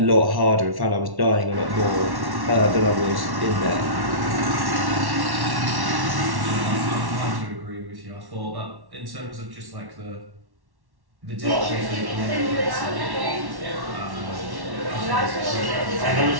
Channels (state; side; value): late; left; 1.1 ms